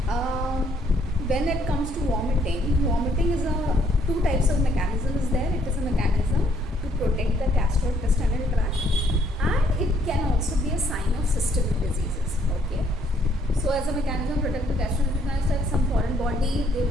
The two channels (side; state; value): both; normal; correlation 0.67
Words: when it comes to vomiting is two types of mechanism is there. It is a mechanism to protect the gastrointestinal tract, and it can also be a sign of systemic diseases. Okay. So as a mechanism to protect the gastrointestinal tract, some foreign body, they